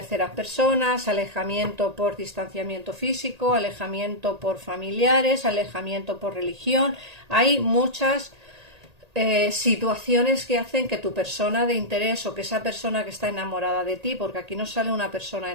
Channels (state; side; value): late; left; 1.8 ms